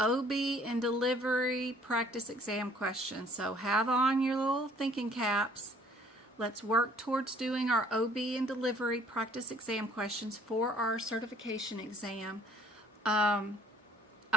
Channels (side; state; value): both; normal; correlation 0.58